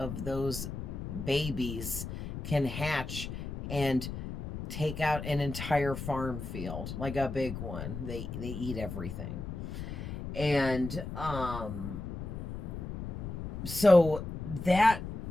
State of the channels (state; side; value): noise; left; rumble, 7 dB below the sound